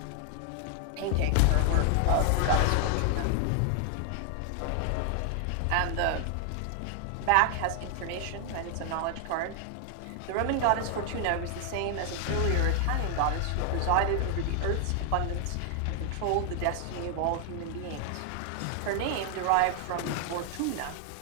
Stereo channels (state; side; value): different; both; correlation 0.00